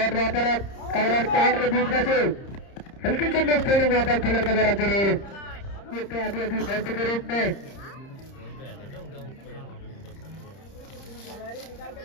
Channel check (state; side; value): late; right; 30 ms